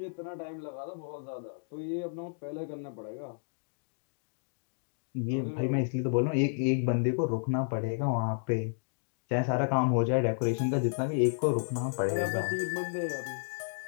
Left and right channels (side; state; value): right; silent; digital silence